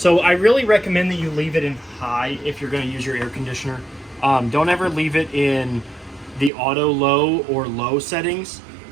I really recommend that you leave it in high if you're gonna use your air conditioner. Don't ever leave it in the auto low or low settings,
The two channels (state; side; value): drops out; left; at 6.5 s